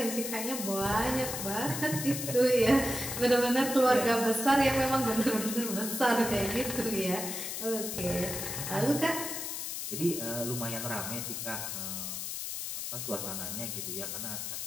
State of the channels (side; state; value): left; noise; hiss, 5 dB below the sound